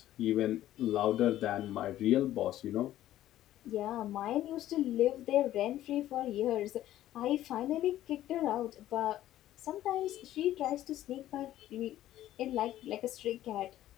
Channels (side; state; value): right; quieter; 13.4 dB